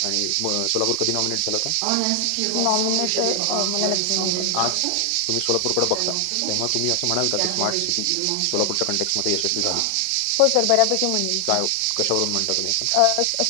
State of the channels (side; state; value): both; different; correlation 0.00